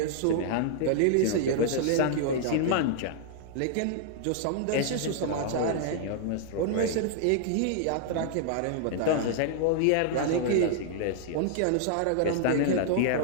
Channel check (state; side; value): different; both; correlation -0.01